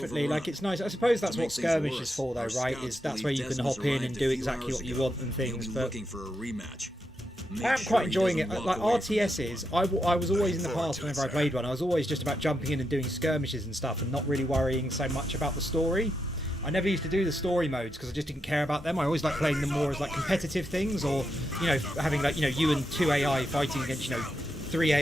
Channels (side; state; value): both; normal; correlation 0.84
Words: overrun. Like, it's nice. I suppose that's To what make things skirmish worse, is for, though, our right? scouts Is that's believe where you can Decimus hop in arrived and a do few exactly hours what you ago. want and He'll things. be But looking for a rematch. Make I am sure quite he enjoying it. doesn't Like walk away from RTSs, I was always in the past whenever I played one. I was always just about jumping in and doing skirmishes and stuff, and not really worrying so much about the story. I never used to do the story modes because I just didn't care about them. I always liked playing them more as like competitive things, or having like you and 2 AI fighting against 3